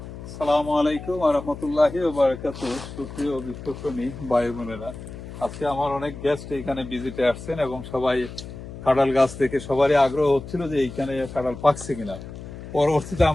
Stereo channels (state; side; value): noise; left; hum, 12 dB below the sound